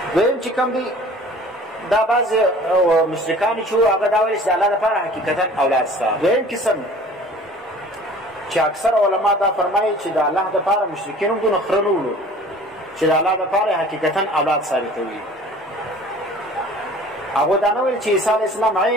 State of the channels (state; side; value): normal; both; correlation 0.47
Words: دویم چې کوم دی دا بعض مشرکان چې وو هغه دا ویل چې د الله دپاره حقیقتا اولاد شته دویم قسم چې اکثر علما دا فرمایي چې د الله دپاره مشرکین هم دونه خره نه وړو چې د الله دپاره حقیقتا اولاد ثابتوي هغو دا نه ویل چې عیسی علیه السلام